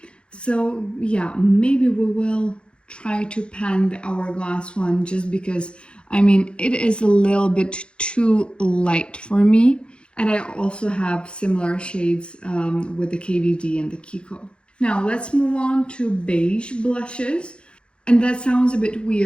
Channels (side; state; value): right; late; 0.056 ms